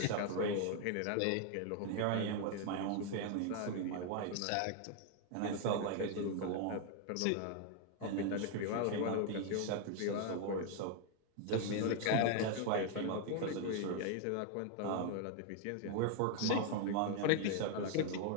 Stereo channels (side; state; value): both; different; correlation 0.00